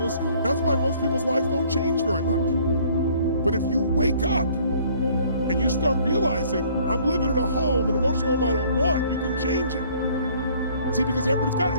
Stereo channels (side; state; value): both; inverted; correlation -0.58